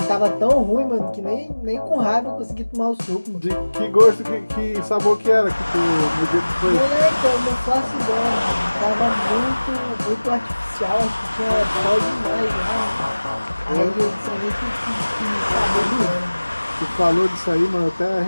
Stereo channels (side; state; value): both; inverted; correlation -1.00